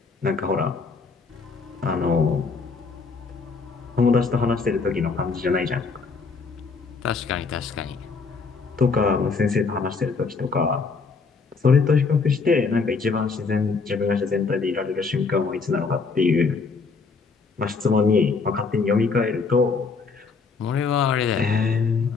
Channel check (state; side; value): quieter; right; 4.7 dB